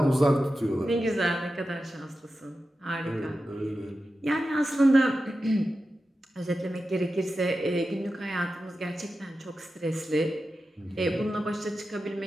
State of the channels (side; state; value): both; normal; correlation 0.92